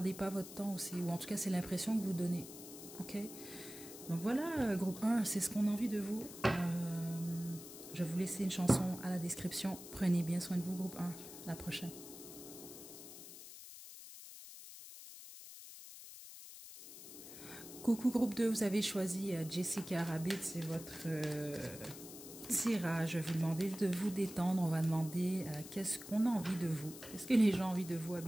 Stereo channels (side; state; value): left; noise; hiss, 14 dB below the sound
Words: pas votre temps aussi. Ou en tout cas, c'est l'impression que vous donnez. Ok? Donc voilà, groupe 1, c'est ce qu'on a envie de vous. Je vais vous laisser une chanson à la description. Prenez bien soin de vous, groupe 1. À la prochaine. Coucou groupe 2, vous avez choisi Jessica Rabbit, c'est votre tirage. Je vais vous demander de vous détendre. On va demander qu'est-ce qu'on a envie de vous. Qu'est-ce que les gens ont envie de vous